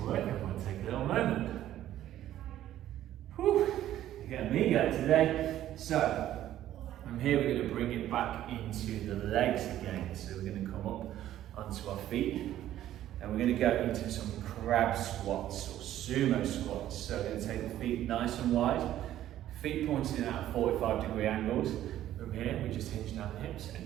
work everyone. Take a little moment. Whew, you're getting me going today. So, from here we're going to bring it back into the legs again. So we're going to come up onto our feet. And we're going to go into some crab squats or sumo squats. So we're going to take the feet nice and wide. Feet pointing out at 45-degree angles. From here, we just hinge down the hips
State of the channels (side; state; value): left; quieter; 12.7 dB